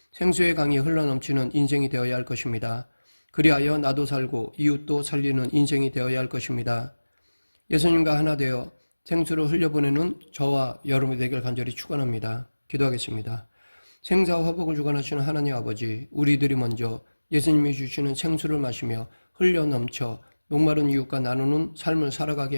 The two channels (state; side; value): inverted; both; correlation -1.00